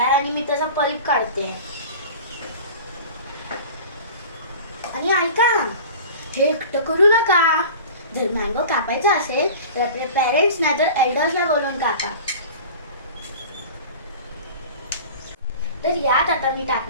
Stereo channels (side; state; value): both; inverted; correlation -0.38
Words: आहे आणि मी त्याचा पल्प काढते. आणि ऐका, हे एकटं करू नका. जर मँगो कापायचा असेल तर आपले पेरेंट्स नाही तर एल्डर्सला बोलून कापा. तर यात आता मी